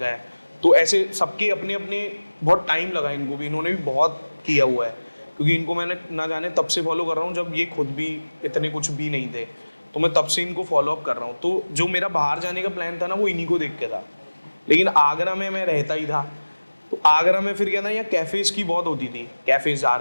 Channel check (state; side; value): inverted; both; correlation -1.00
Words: है, तो ऐसे सबके अपने अपने बहुत टाइम लगा इनको भी, इन्होंने भी बहुत किया हुआ है, क्योंकि इनको मैंने ना जाने तब से फॉलो कर रहा हूँ जब ये खुद भी इतने कुछ भी नहीं थे, तो मैं तब से इनको फॉलो अप कर रहा हूँ। तो जो मेरा बाहर जाने का प्लान था ना, वो इन्हीं को देख के था, लेकिन आगरा में मैं रहता ही था। तो आगरा में फिर क्या था, यहाँ कैफ़ेज़ की बहुत होती थी, कैफ़ेज़ जा